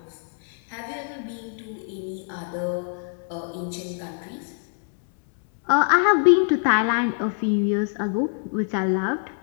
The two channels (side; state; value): right; silent; 62 dB below the other